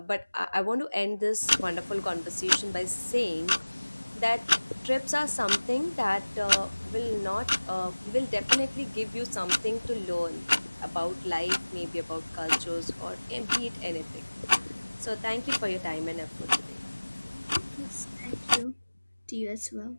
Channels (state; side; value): inverted; both; correlation -1.00